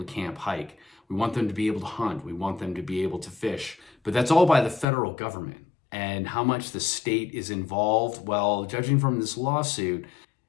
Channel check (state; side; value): drops out; right; at 4.9 s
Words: to camp, hike. We want them to be able to hunt. We want them to be able to fish. But that's all by the federal government. And how much the state is involved, well, judging from this lawsuit,